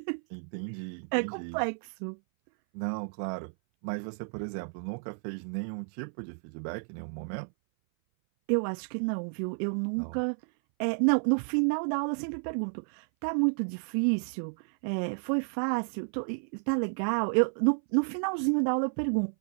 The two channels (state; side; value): silent; left; 57 dB below the other